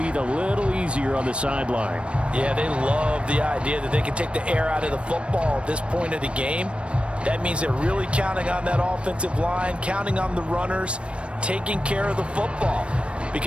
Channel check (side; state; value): left; late; 0.059 ms